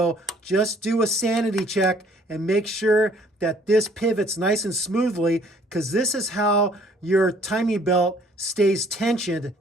just do a sanity check and make sure that this pivots nice and smoothly, because this is how your timing belt stays tensioned.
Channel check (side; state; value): both; normal; correlation 0.59